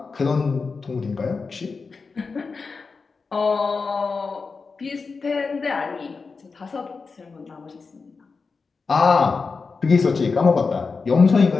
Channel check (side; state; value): right; quieter; 4.6 dB